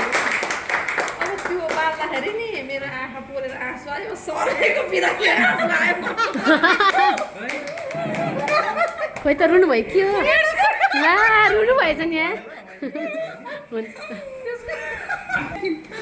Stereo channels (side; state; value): both; identical; correlation 1.00